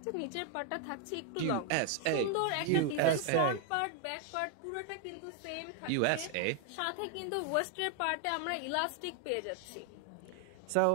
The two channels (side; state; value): both; different; correlation 0.00